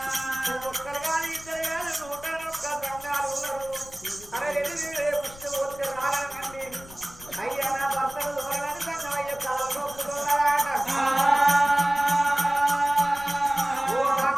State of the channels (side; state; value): left; noise; rumble, 19 dB below the sound